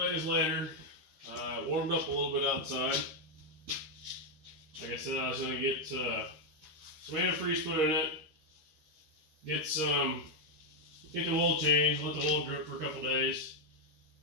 later. It warmed up a little bit outside. Like I said, I was going to get some antifreeze put in it, get the oil changed, let the oil drip for a couple days.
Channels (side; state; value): left; late; 13 ms